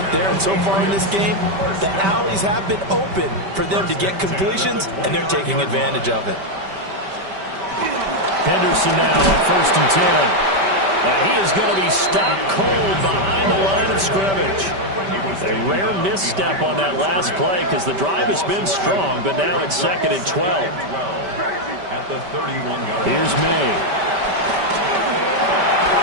there. And so far in this game, the alleys have been open for them to get completions, and they're taking advantage of it. Henderson now on 1st and 10. And he is going to be stopped cold behind the line of scrimmage. A rare misstep on that last play because the drive has been strong, but now it's 2nd and 12. At the 31-yard. Here's May.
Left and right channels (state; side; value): late; left; 5.1 ms